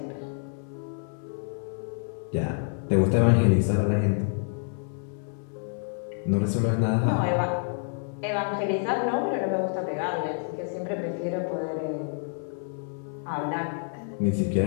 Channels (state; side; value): silent; right; 56 dB below the other